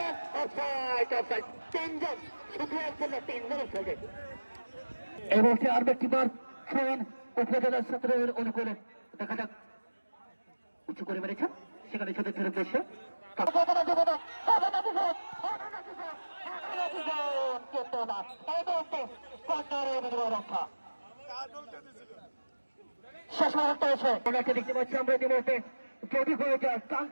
Offside, offside. তিনজন, শুধু একজন না, তিনজনের সঙ্গে। এই মুহূর্তে আর একটি বার ফোন উপজেলা ছাত্রের অনুকূলে। দেখা যাক, উঁচু করে মেরেছেন, সেখানে ছোটের উদ্দেশ্যে রক্ষা শেষ মুহূর্তে এসে ওনাকে দেখতে পাচ্ছি আমরা ইতিমধ্যে। যদি হয়ে যায়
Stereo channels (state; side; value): inverted; both; correlation -1.00